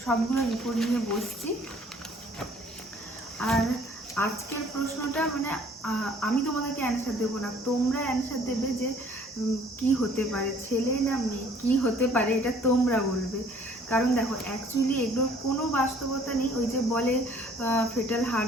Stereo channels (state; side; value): normal; both; correlation 0.56